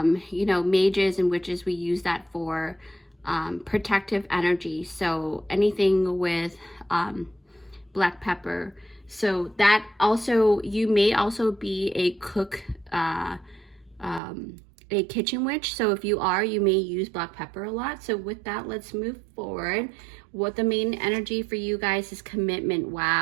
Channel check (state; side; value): drops out; left; at 14.2 s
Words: you know, mages and witches, we use that for protective energy. So anything with black pepper. So that also, you may also be a cook, a kitchen witch. So if you are, you may use black pepper a lot. So with that, let's move forward. What the main energy for you guys is commitment.